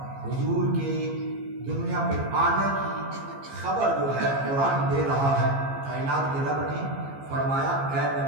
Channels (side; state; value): left; late; 15 ms